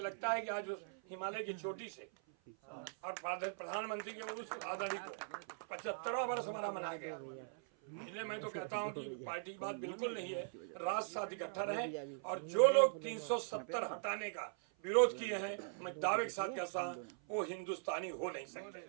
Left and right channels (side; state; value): left; silent; 50 dB below the other